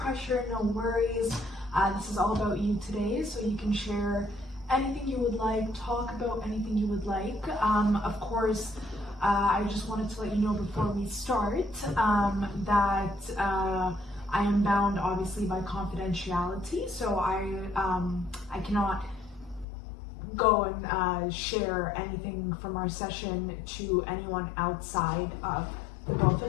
no worries. This is all about you today, so you can share anything you would like, talk about anything you would like. Of course, I just wanted to let you know before we start that I am bound obviously by confidentiality, so I cannot go and share anything from our session to anyone outside of the both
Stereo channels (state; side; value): drops out; right; at 19.7 s